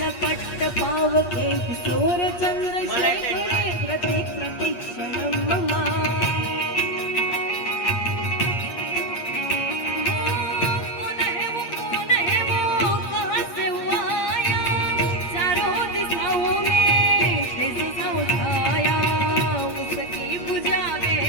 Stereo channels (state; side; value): late; right; 8.4 ms